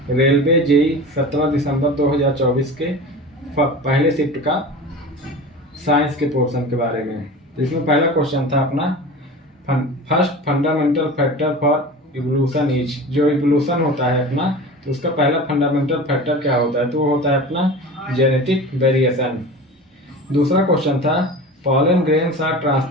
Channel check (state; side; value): normal; both; correlation 0.34